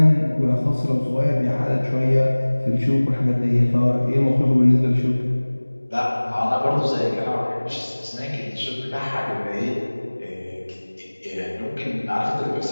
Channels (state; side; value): inverted; both; correlation -1.00